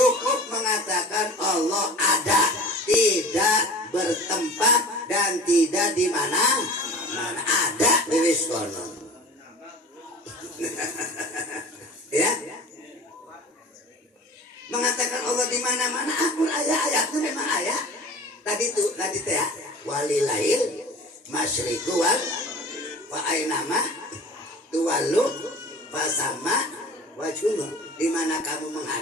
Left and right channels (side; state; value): both; normal; correlation 0.40